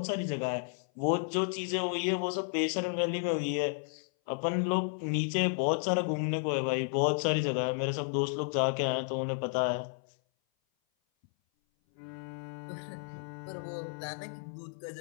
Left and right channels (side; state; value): right; silent; 56 dB below the other